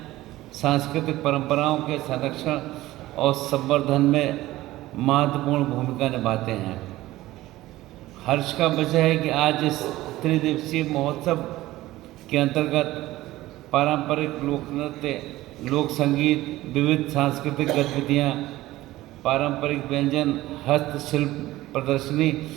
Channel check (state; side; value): quieter; left; 16.8 dB